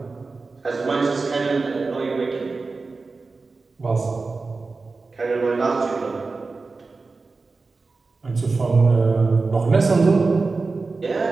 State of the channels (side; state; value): left; quieter; 4.0 dB